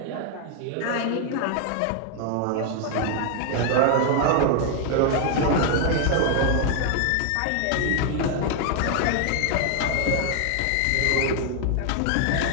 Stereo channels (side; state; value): both; different; correlation 0.00